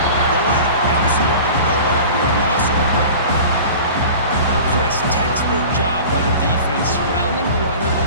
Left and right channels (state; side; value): inverted; both; correlation -0.39